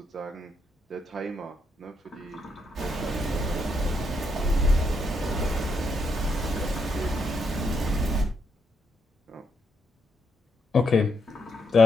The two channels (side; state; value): both; normal; correlation 0.78